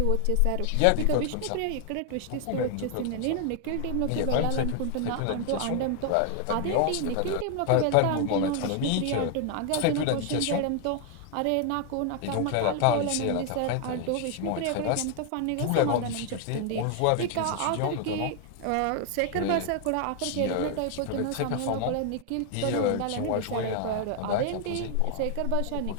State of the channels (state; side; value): different; both; correlation 0.00